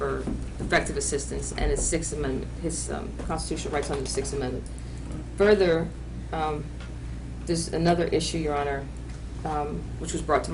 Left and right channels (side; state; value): both; identical; correlation 1.00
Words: effective assistance and his Sixth Amendment, his constitutional rights under the Sixth Amendment. Further, there's another issue, Your Honor, which was brought to